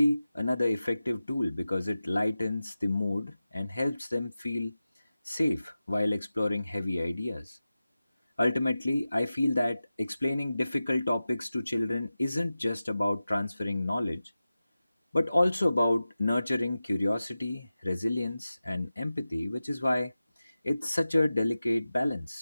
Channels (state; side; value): inverted; both; correlation -0.95